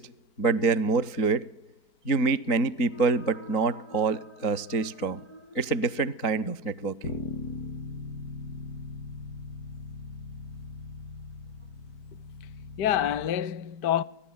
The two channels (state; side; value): late; right; 4.5 ms